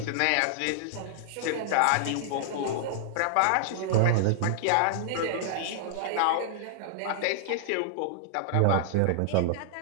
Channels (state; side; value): different; both; correlation -0.01